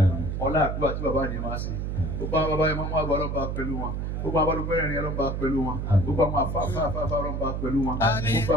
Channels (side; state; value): right; noise; hum, 2 dB below the sound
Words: ọlá àdúrà tí bàbá yẹn máa ṣe gbogbo àwọn bàbá yẹn máa mú àgbà ọlọ́ba pẹ̀lú wọn gbogbo àwọn alùpùpù ọlọ́ba pẹ̀lú wọn gbogbo àwọn afáfáfá ọlọ́ba pẹ̀lú wọn gbogbo